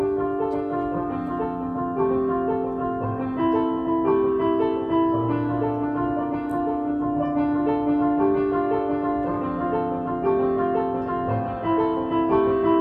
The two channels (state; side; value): identical; both; correlation 1.00